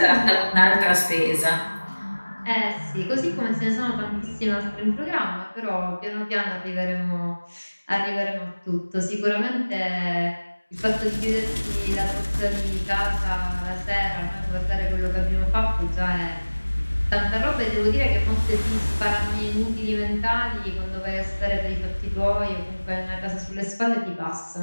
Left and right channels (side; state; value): both; inverted; correlation -1.00